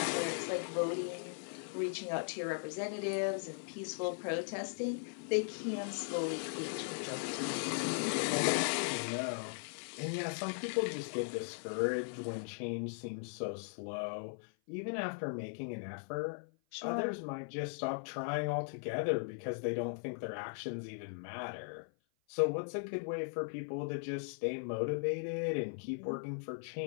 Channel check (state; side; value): silent; right; 52 dB below the other